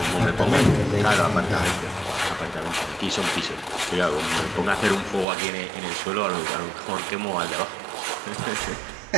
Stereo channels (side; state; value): left; drops out; at 5.2 s